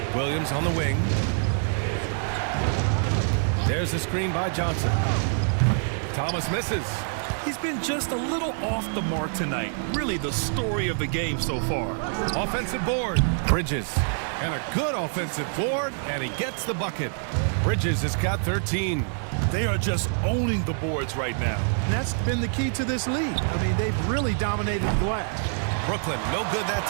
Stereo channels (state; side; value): silent; left; 60 dB below the other